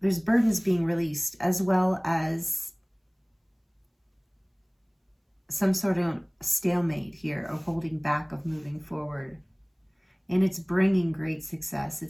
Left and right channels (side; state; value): both; identical; correlation 1.00